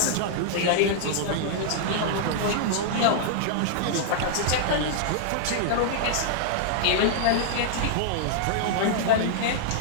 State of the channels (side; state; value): both; different; correlation -0.01